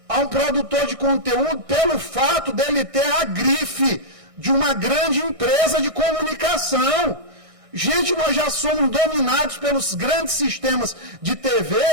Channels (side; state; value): left; late; 1.6 ms